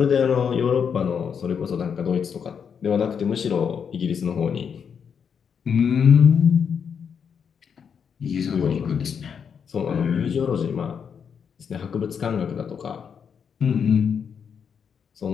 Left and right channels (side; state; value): right; quieter; 7.0 dB